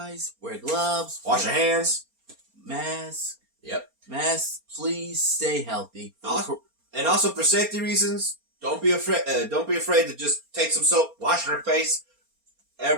wear gloves, Wash your hands. mask. Yep. Mask, please stay healthy. And also for safety reasons, don't be afraid to just take some soap, wash your face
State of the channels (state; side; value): late; left; 4.3 ms